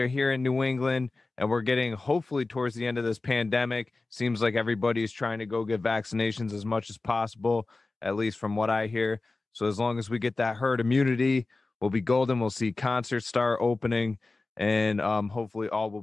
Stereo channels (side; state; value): right; quieter; 3.4 dB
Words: here in New England, and we're getting hopefully towards the end of this pandemic. Seems like everybody's trying to go get vaccinations as much as possible, at least from what I hear. So as long as we get that herd immunity, we'll be golden. We'll see concerts start opening, and hopefully all